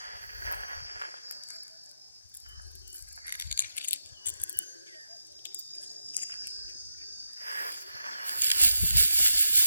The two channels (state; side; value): inverted; both; correlation -0.87